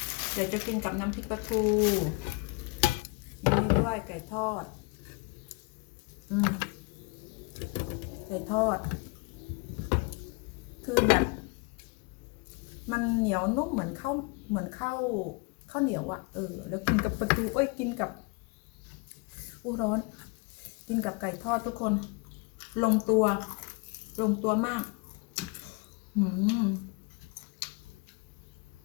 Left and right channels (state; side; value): quieter; right; 28.4 dB